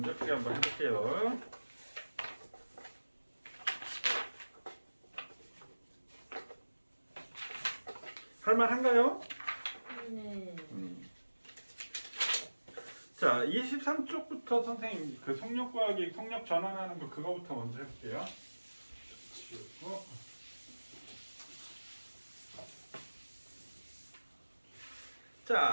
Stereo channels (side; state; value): both; inverted; correlation -1.00